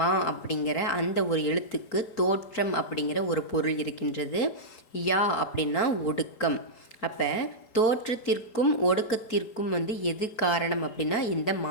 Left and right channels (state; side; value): late; right; 3.8 ms